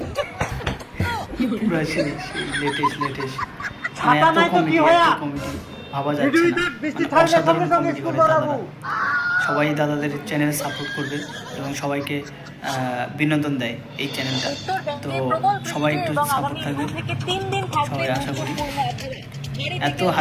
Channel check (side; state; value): both; identical; correlation 1.00